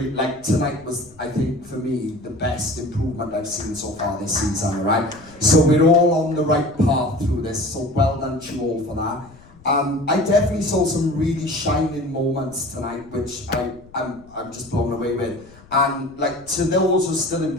like, tonight was, I think, for me, the best improvement I've seen so far this season, right? So we're all on the right path through this, so well done to you all for that. I definitely saw some really shining moments tonight, which I'm just blown away with. And like, to those who are still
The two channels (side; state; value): left; noise; rumble, 24 dB below the sound